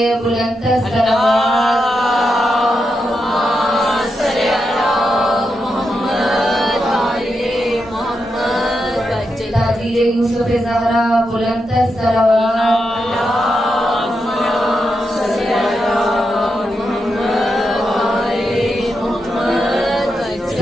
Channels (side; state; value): both; normal; correlation 0.85